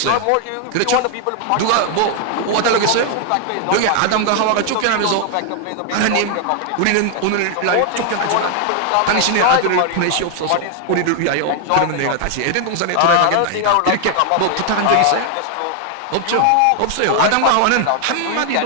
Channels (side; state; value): both; different; correlation 0.00